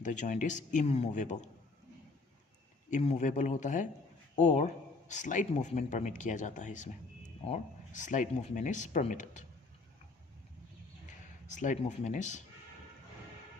इज इमूवेबल होता है और स्लाइट मूवमेंट परमिट किया जाता है इसमें, और slight movement is permitted. Slight movement is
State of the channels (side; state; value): right; quieter; 3.6 dB